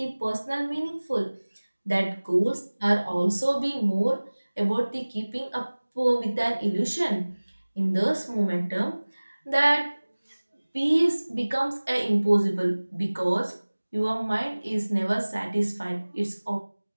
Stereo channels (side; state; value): both; inverted; correlation -1.00